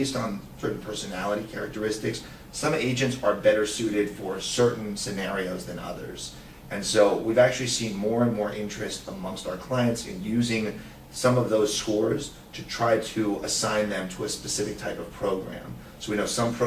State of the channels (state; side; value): identical; both; correlation 1.00